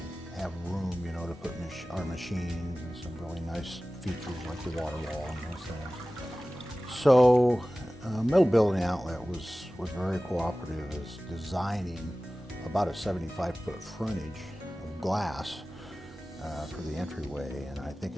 have room, you know, to put our machines and some really nice features like the water wall and those things. So Metal Building Outlet was very cooperative as designing about a 75-foot frontage glass for the entryway, and I think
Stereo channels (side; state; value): both; normal; correlation 0.97